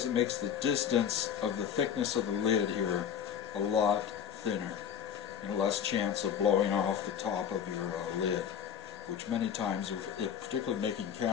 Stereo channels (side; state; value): right; quieter; 8.6 dB